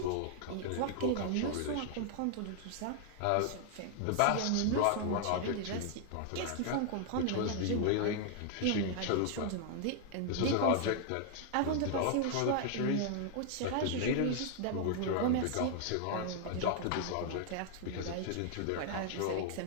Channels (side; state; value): both; different; correlation 0.00